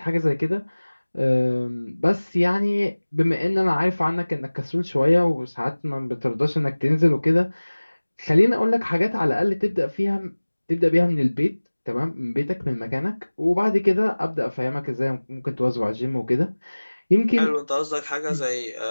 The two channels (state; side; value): inverted; both; correlation -1.00